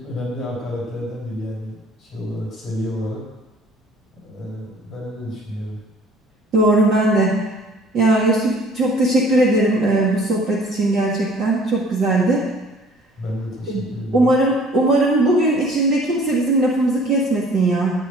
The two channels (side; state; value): both; normal; correlation 0.53